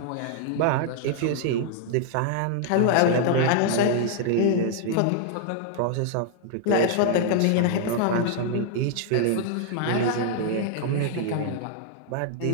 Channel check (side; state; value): both; different; correlation 0.00